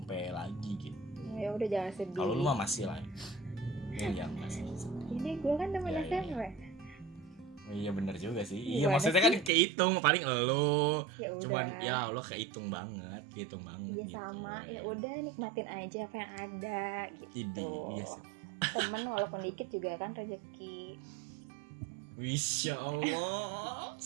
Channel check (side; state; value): left; drops out; at 9.5 s